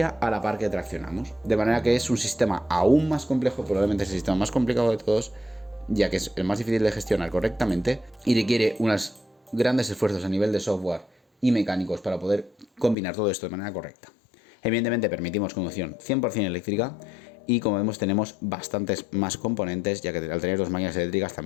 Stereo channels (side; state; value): right; drops out; at 13.0 s